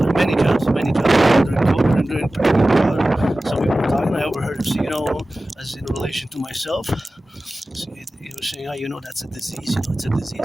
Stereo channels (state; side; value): normal; both; correlation 0.96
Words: many jobs during COVID and during pandemic. Some people were talking. I overheard him say, as in relation to myself, he was saying, that's a disease. It's a